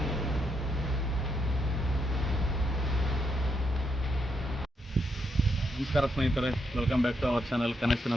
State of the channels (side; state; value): both; normal; correlation 0.79